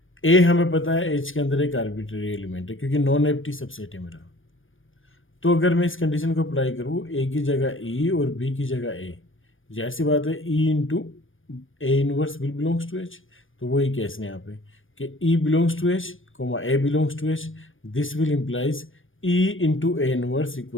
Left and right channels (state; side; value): late; right; 0.58 ms